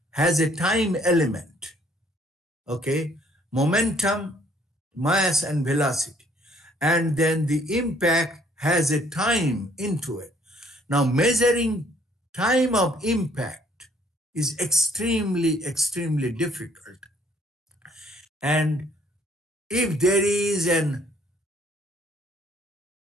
has a time element. Okay, momentum, mass, and velocity, and then the impact has a time into it. Now, measuring time of impact is extremely difficult, and if there is an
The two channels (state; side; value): normal; both; correlation 0.63